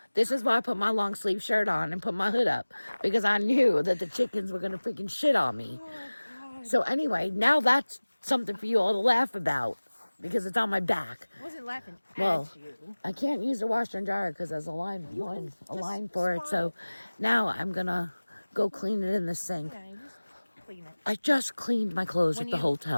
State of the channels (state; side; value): inverted; both; correlation -1.00